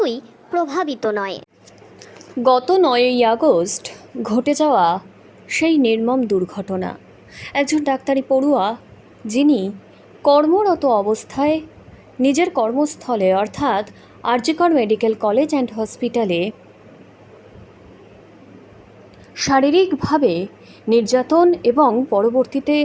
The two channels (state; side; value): identical; both; correlation 1.00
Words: প্রভাবিত নয়। গত 9ই আগস্ট ঘটে যাওয়া সেই নির্মম দুর্ঘটনা, একজন ডাক্তারি পড়ুয়া যিনি কর্মরত অবস্থায় নিজের কর্মস্থলে অর্থাৎ আরজিকর মেডিকেল কলেজ অ্যান্ড হসপিটালে শারীরিকভাবে নির্যাতন এবং পরবর্তীতে